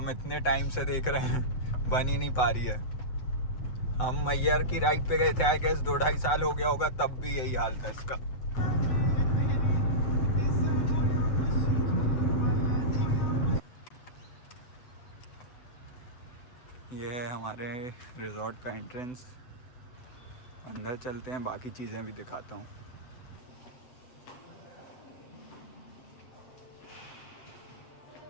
इतने टाइम से देख रहे हैं, बन ही नहीं पा रही है। हम मैयर की राइड पे गए थे, आई गेस 2-2.5 साल हो गया होगा, तब भी यही हाल था इसका। ये है हमारे रिजॉर्ट का एंट्रेंस। अंदर चलते हैं, बाकी चीज़ें भी दिखाता हूँ।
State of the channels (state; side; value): late; right; 8.0 ms